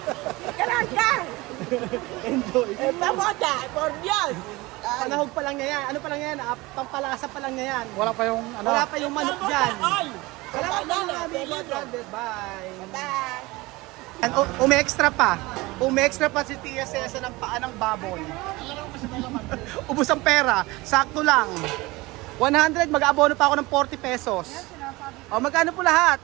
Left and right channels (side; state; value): left; quieter; 21.8 dB